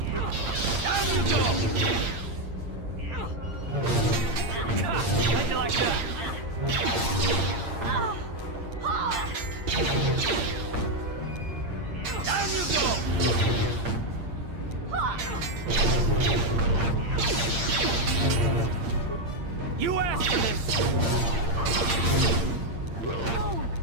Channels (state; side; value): late; left; 8.7 ms